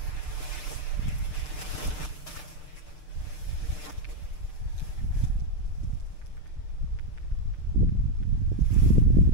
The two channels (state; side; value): late; right; 6.7 ms